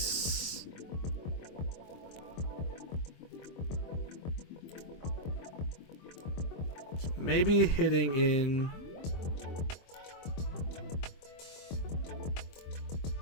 So maybe hitting in.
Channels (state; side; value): late; right; 23 ms